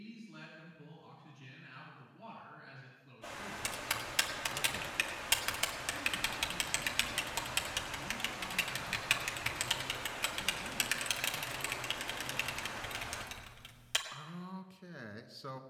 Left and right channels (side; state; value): both; identical; correlation 1.00